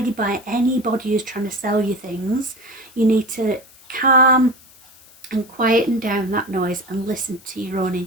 by anybody who's trying to sell you things. You need to calm and quieten down that noise and listen to your own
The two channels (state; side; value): noise; left; hiss, 25 dB below the sound